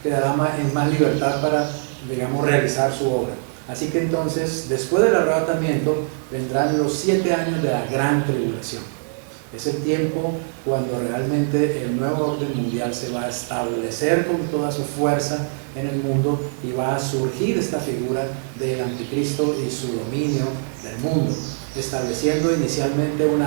en más libertad para, digamos, realizar su obra. Así que entonces, después del arrebatamiento, vendrán los 7 años de la gran tribulación. Es el tiempo cuando realmente el nuevo orden mundial se va a establecer con toda su fuerza en el mundo y va a surgir esta figura del anticristo y su dominio del mundo, estableciendo inicialmente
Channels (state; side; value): silent; left; 64 dB below the other